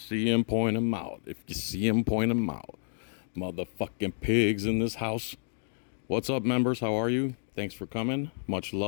'em, point 'em out. If you see 'em, point 'em out. Motherfucking pigs in this house. What's up, members? How are you? Thanks for coming. Much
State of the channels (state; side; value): silent; right; digital silence